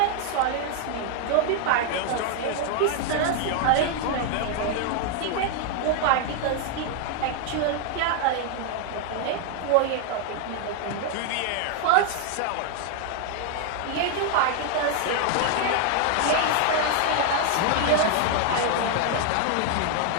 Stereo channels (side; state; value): both; different; correlation 0.00